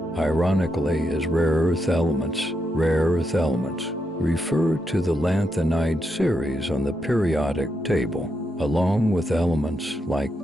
ironically, is rare earth elements. Rare earth elements refer to the lanthanide series on the periodic table, along with elements like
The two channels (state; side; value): normal; both; correlation 0.83